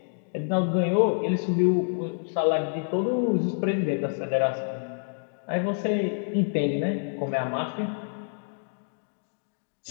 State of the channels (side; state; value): right; silent; digital silence